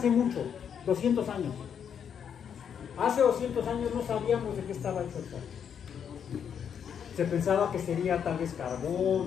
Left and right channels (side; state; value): right; quieter; 7.9 dB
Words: mucho? 200 años. Hace 200 años no sabíamos de qué estaba hecho el sol. Se pensaba que sería tal vez